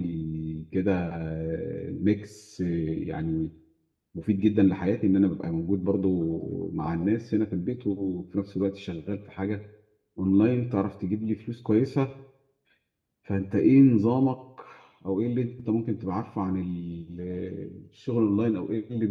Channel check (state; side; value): identical; both; correlation 1.00